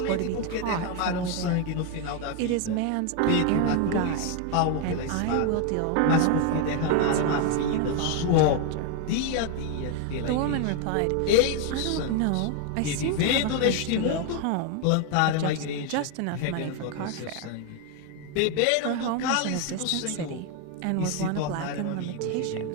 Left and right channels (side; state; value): both; different; correlation 0.01